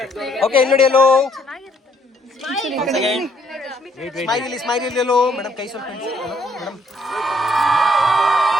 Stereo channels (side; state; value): both; normal; correlation 0.67